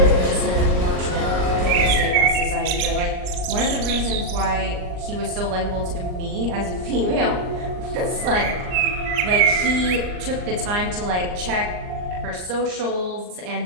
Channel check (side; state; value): left; late; 39 ms